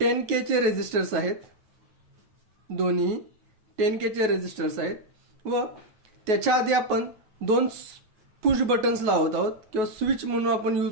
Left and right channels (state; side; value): late; left; 9.3 ms